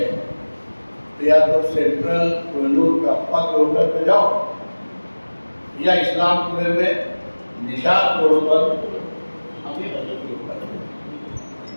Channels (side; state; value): both; inverted; correlation -1.00